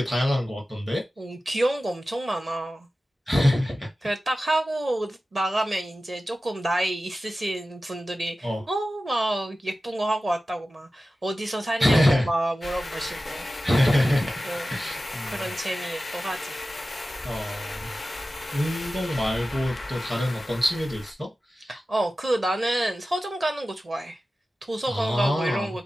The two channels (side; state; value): both; normal; correlation 0.95